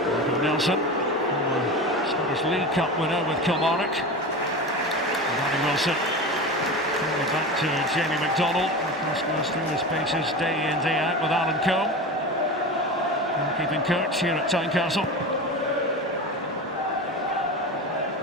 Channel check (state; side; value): normal; both; correlation 0.27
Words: Nelson, former Scottish League Cup winner with Kilmarnock. Danny Wilson. Back to Jamie McDonald. Of course, goes through his paces day in, day out with Alan Combe. Keeping coach here at Tynecastle.